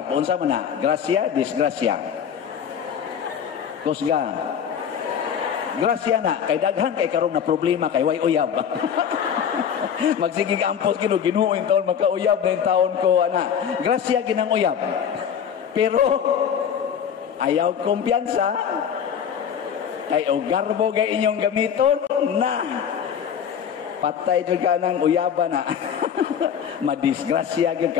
unsa man na? Grasya, disgrasya. Kusga. Grasya na, kay daghan kay karon na problema kay way uyab. Magsigig ampos kino ginuoy taon makauyab na yung taon ko ana. Grasya ginang uyab. Pero ayaw kumpiyansa kay o garbo gay inyong gamiton na patay jud ka nang uyaba na. Madisgrasya gyud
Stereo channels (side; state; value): right; quieter; 8.1 dB